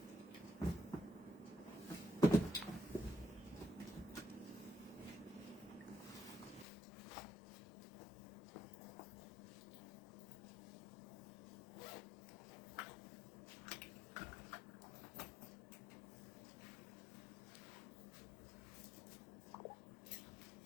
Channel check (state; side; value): drops out; right; at 6.7 s